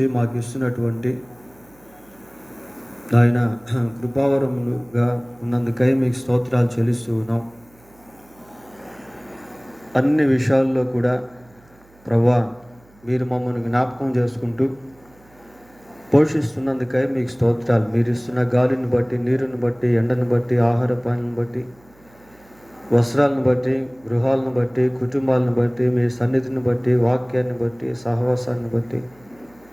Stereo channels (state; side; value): noise; right; hum, 29 dB below the sound